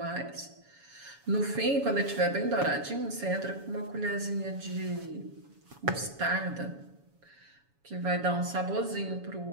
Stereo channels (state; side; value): late; left; 7.1 ms